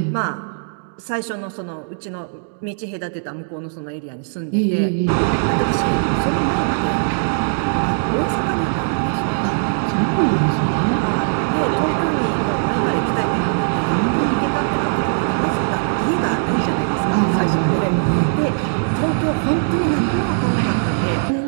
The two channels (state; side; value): silent; left; digital silence